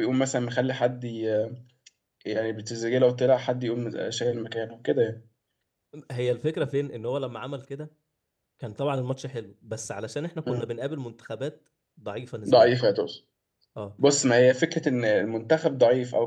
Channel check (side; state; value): both; identical; correlation 1.00